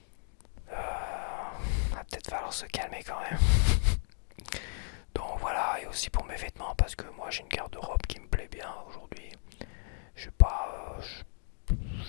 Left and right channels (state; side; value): silent; right; 55 dB below the other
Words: Va peut-être falloir se calmer quand même. Donc voilà, et aussi pour mes vêtements, parce que moi j'ai une garde-robe qui me plaît bien aujourd'hui. J'ai pas,